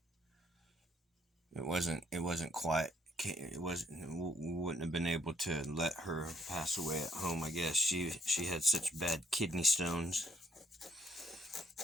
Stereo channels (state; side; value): normal; both; correlation 0.67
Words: It wasn't quite. It wasn't. We wouldn't have been able to let her pass away at home. I guess she had such bad kidney stones.